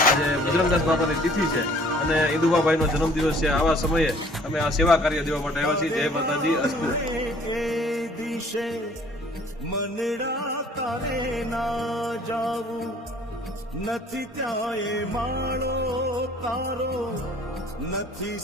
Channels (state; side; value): normal; both; correlation 0.55